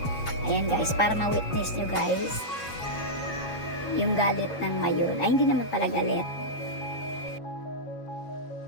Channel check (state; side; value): late; right; 7.2 ms